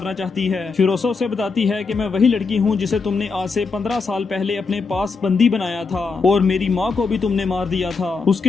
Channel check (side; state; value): right; quieter; 4.6 dB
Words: चाहती है। फिरोसा उसे बताती है कि मैं वही लड़की हूँ जिसे तुमने आज से 15 साल पहले अपने पास बंदी बनाया था और मेरी माँ को भी तुमने मार दिया था।